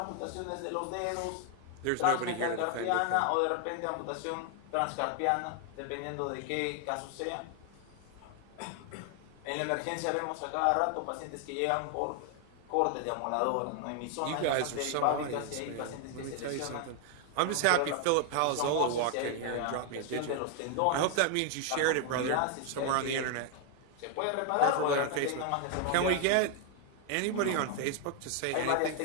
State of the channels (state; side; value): different; both; correlation 0.00